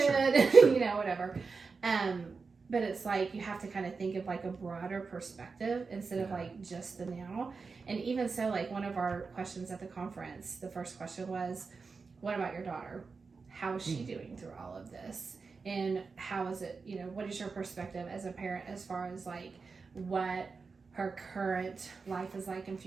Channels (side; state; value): left; quieter; 4.7 dB